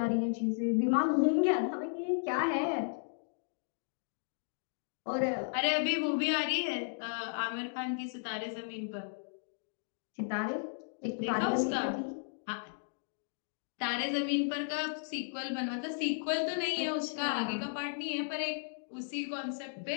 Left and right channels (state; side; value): silent; right; digital silence